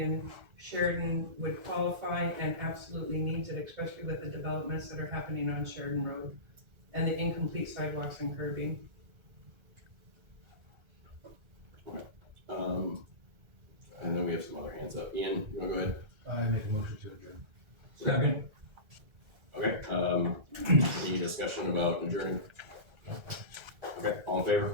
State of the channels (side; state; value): left; late; 1.3 ms